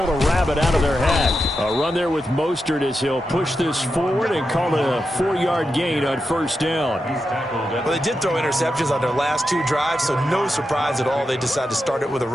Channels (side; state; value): both; normal; correlation 0.88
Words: a rabbit out of their hat. A run there with Mostert as he'll push this forward and call it a 4-yard gain on 1st down. Well, they did throw interceptions on their last 2 drives, so no surprise at all they decided to start it with a